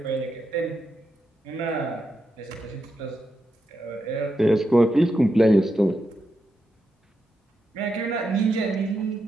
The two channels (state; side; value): normal; both; correlation 0.85